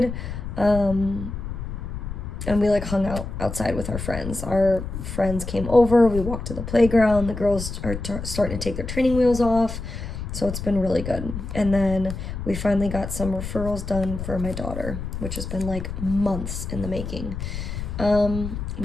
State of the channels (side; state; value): left; noise; rumble, 7 dB below the sound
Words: And we like hung out outside with our friends. Our friends came over. We walked to the playground. The girls are starting to take their training wheels off. So it's been really good. And then we finally got some referrals done for my daughter, which has been like months in the making.